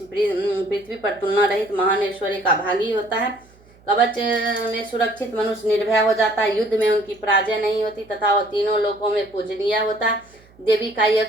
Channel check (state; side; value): noise; right; hum, 28 dB below the sound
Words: पृथ्वी पर तुलना रहित महान ऐश्वर्य का भागी होता है। कवच में सुरक्षित मनुष्य निर्भय हो जाता है। युद्ध में उनकी पराजय नहीं होती तथा वह तीनों लोकों में पूजनीय होता है। देवी का यह